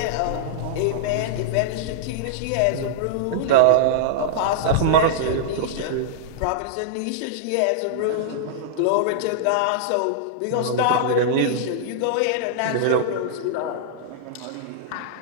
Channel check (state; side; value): different; both; correlation -0.01